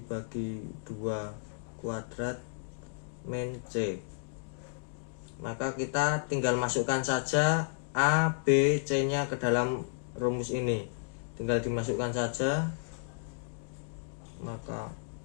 2 kuadrat min C. Maka kita tinggal masukkan saja A, B, C-nya ke dalam rumus ini. Tinggal dimasukkan saja. Maka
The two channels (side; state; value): right; silent; digital silence